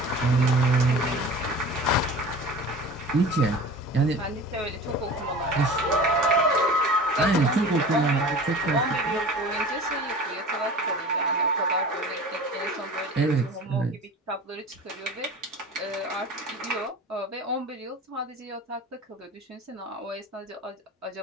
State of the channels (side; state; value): both; normal; correlation 0.39